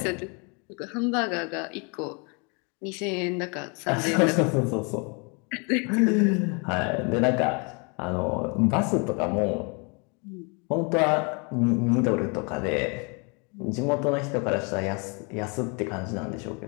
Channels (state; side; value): quieter; right; 33.3 dB